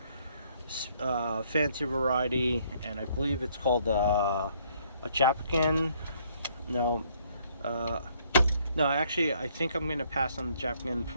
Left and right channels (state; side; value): inverted; both; correlation -0.66